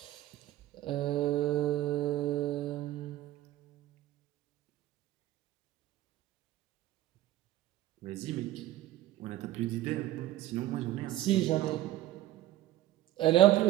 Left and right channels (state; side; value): quieter; left; 14.6 dB